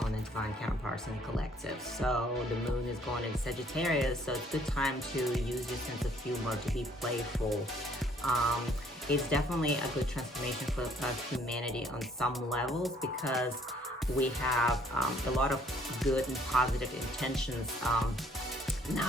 on the Divine Counterparts and Collective. So the moon is going into Sagittarius, so it's a good time to use your sense of humor to be playful. It's definitely a good transformation for humanity on some levels, because we have a lot of good and positive intentions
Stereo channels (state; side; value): normal; both; correlation 0.62